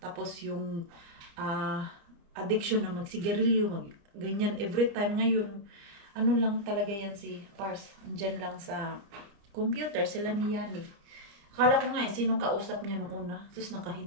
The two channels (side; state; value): left; late; 30 ms